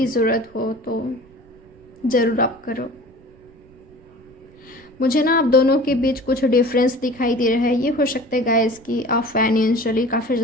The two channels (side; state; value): right; noise; rumble, 27 dB below the sound